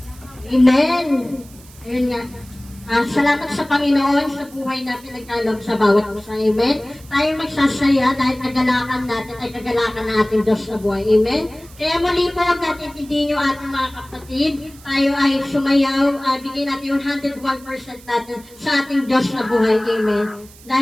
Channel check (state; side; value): noise; right; hiss, 23 dB below the sound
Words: Amen. Ayun nga. Salamat sa Panginoon sa buhay natin nagkaloob sa bawat isa. Amen. Tayo magsasaya dahil kagalakan natin ay kagalakan ng ating Diyos sa buhay. Amen. Kaya muli po, huwag natin tindihin yung ating mga kapatid. Tayo ay sumayaw, bigyan natin yung 101% natin sa ating Diyos sa buhay. Amen.